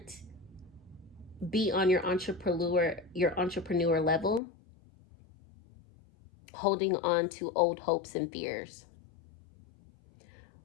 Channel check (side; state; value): right; drops out; at 4.4 s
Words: be on your entrepreneur level holding on to old hopes and fears.